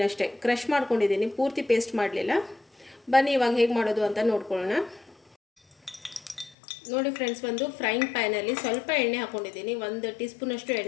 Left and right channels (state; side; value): drops out; right; at 6.6 s